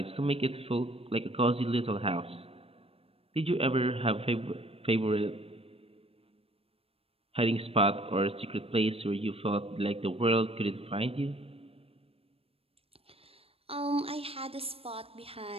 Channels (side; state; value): left; late; 0.28 ms